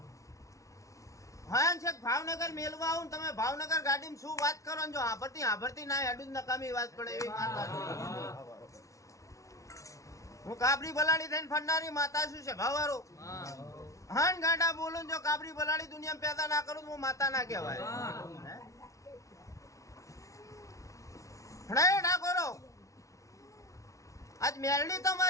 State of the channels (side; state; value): right; late; 0.15 ms